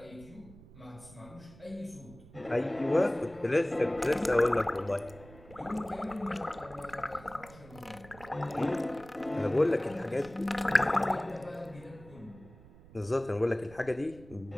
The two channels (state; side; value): noise; right; rumble, 20 dB below the sound